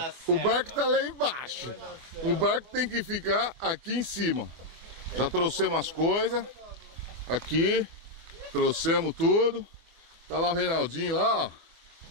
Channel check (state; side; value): late; left; 24 ms